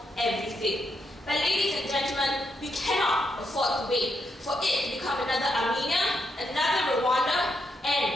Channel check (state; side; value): normal; both; correlation 0.81